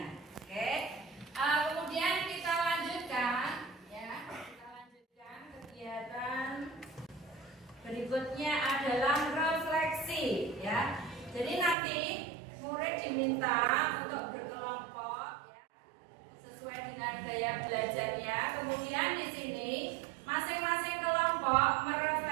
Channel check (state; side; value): drops out; left; at 11.8 s